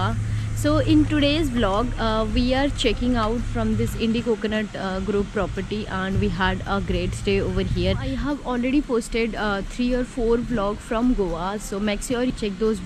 So in today's vlog, we are checking out from this Indie Coconut Group property, and we had a great stay over here. I have already posted 3 or 4 vlogs from Goa, so make sure you check those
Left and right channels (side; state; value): both; identical; correlation 1.00